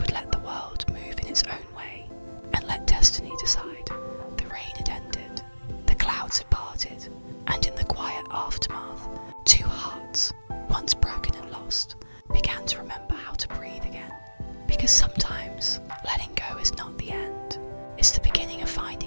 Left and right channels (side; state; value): both; inverted; correlation -1.00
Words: let the world move in its own way, and let destiny decide. The rain had ended, the clouds had parted, and in the quiet aftermath, two hearts, once broken and lost, began to remember how to breathe again. Because sometimes letting go is not the end, it's the beginning of